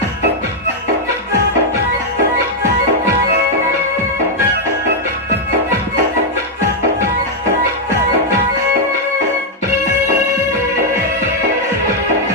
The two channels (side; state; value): both; normal; correlation -0.01